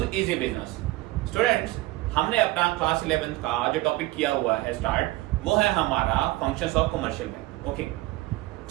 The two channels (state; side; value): quieter; left; 18.8 dB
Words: easy business. Students, हमने अपना क्लास 11th का जो टॉपिक किया हुआ है स्टार्ट, वो है हमारा functions of commercial bank. Okay,